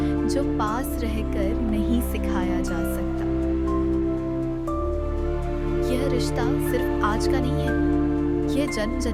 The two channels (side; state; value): both; identical; correlation 1.00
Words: जो पास रहकर नहीं सिखाया जा सकता। यह रिश्ता सिर्फ आज का नहीं है, यह जन्म